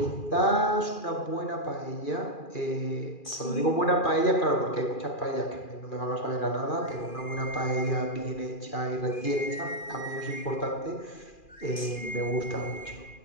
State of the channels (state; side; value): late; right; 2.4 ms